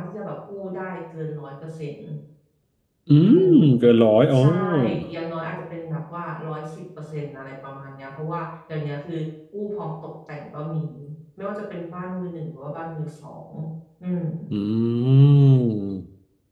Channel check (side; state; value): both; identical; correlation 1.00